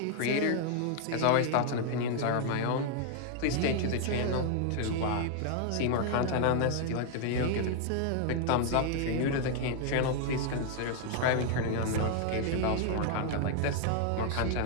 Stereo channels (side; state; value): both; different; correlation 0.00